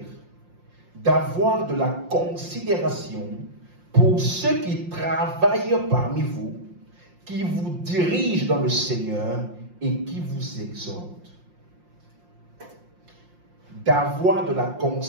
d'avoir de la considération pour ceux qui travaillent parmi vous, qui vous dirigent dans le Seigneur et qui vous exhortent. D'avoir de la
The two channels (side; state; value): left; late; 5.7 ms